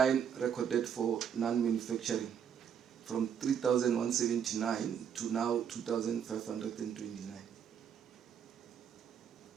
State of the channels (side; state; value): left; quieter; 8.2 dB